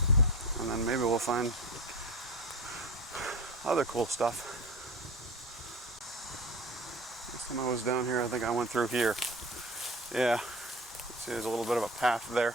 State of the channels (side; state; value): both; normal; correlation 0.33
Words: and then maybe we'll find other cool stuff. Last time I was down here, I think I went through here. Yeah, see there's a little bit of a path there.